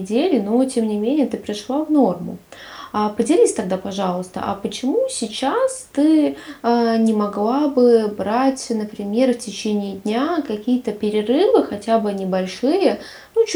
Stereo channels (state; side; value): identical; both; correlation 1.00